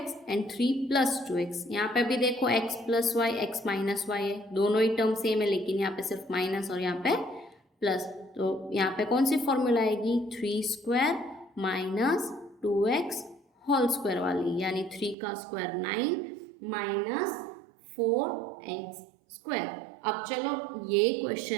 and 3 plus 2x. यहाँ पे भी देखो x plus Y X minus Y है, दोनों ही टर्म सेम है लेकिन यहाँ पे सिर्फ माइनस और यहाँ पे प्लस. तो यहाँ पे कौन सी फॉर्मूला आएगी? 3 square minus 2x whole square वाली यानी 3 का स्क्वायर 9 माइनस 4x स्क्वायर. अब चलो ये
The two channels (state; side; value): drops out; left; at 15.2 s